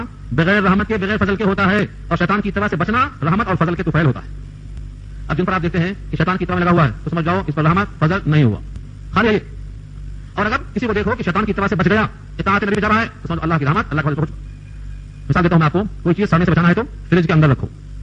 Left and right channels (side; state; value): both; identical; correlation 1.00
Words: بغیر رحمت کے, بغیر فضل کے ہوتا ہے, اور شیطان کی اتباع سے بچنا رحمت اور فضل کے طفیل ہوتا ہے. اب جن پر آپ دیکھتے ہیں کہ شیطان کی اتباع میں لگا ہوا ہے تو سمجھ جاؤ اس پر رحمت فضل نہیں ہوا, خالی ہے یہ. اور اگر کسی کو دیکھو کہ شیطان کی اتباع سے بچ گیا, اطاعت نبی جا رہا ہے, تو سمجھو اللہ کی رحمت, اللہ کا فضل. مثال دیتا ہوں میں آپ کو, کوئی چیز سڑنے سے بچانا ہے تو فریج کے اندر رکھو,